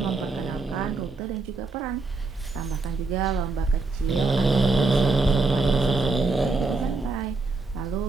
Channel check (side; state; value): left; quieter; 3.6 dB